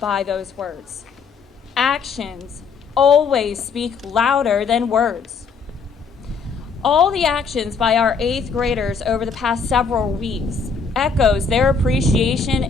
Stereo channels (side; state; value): right; quieter; 5.3 dB